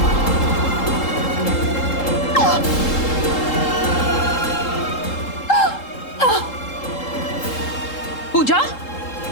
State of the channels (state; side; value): late; right; 3.7 ms